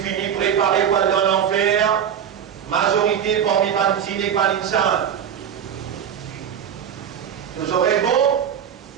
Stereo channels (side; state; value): left; quieter; 8.6 dB